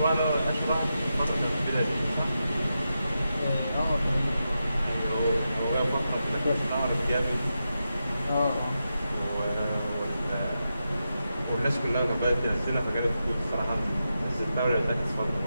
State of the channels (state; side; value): inverted; both; correlation -0.88